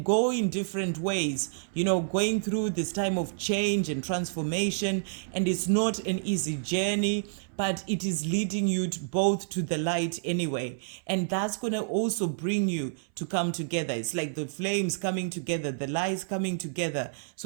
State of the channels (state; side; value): silent; left; 59 dB below the other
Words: go in different ways, going through this time of change and transformation. And it's not an easy journey, but it is leading you both to the light anyway. And that's going to also bring you to come together. It's like the flames coming together, the lights coming together.